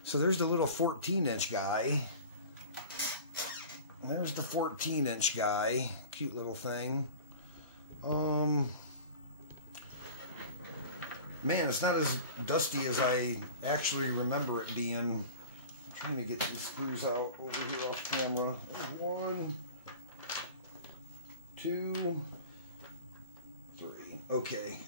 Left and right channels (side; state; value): both; inverted; correlation -0.38